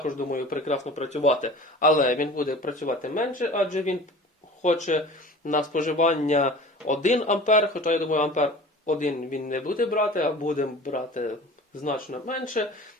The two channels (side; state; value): both; normal; correlation 0.41